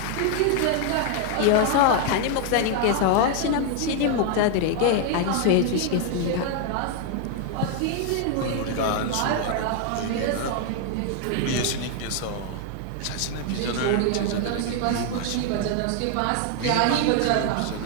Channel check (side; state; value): both; different; correlation 0.00